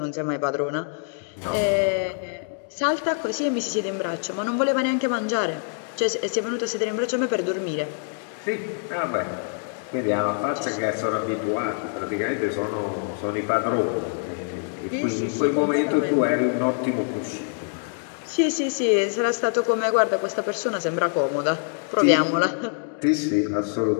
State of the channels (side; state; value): right; silent; 58 dB below the other